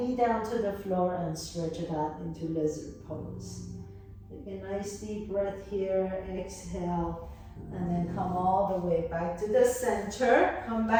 down to the floor and stretch it out into lizard pose. Take a nice deep breath here, exhale, and then come all the way back to the center. Come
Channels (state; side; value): identical; both; correlation 1.00